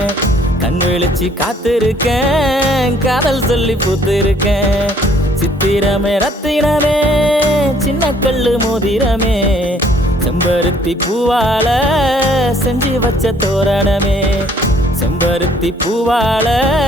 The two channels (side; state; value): both; normal; correlation 0.61